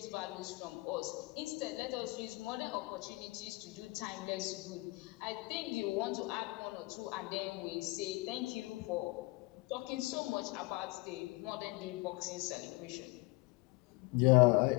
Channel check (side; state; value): right; quieter; 23.8 dB